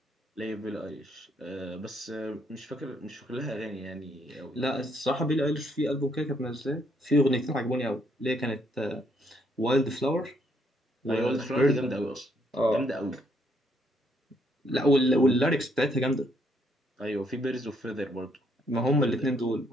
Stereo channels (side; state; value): both; normal; correlation 0.71